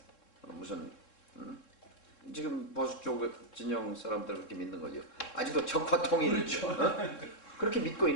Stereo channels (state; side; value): late; right; 3.7 ms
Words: 무슨 지금 보수 쪽 진영 사람들 그렇게 믿는 거죠. 아직도 적화 통일 그렇죠. 그렇게 믿고